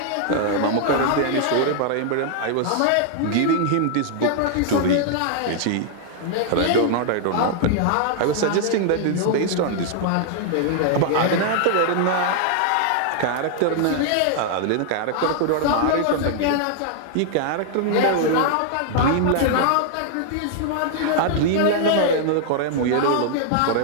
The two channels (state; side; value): different; both; correlation -0.01